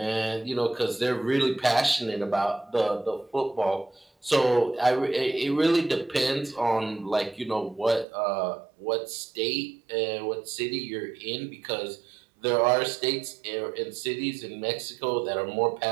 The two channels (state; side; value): drops out; left; at 8.1 s